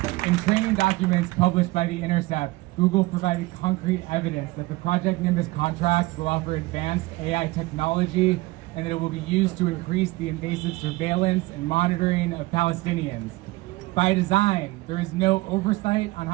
In training documents published by The Intercept, Google provided concrete evidence that the Project Nimbus contract will offer advanced AI technology and that it will be used to increase the invasive surveillance and monitoring of Palestinians. By design, there is no oversight on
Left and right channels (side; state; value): left; quieter; 20.9 dB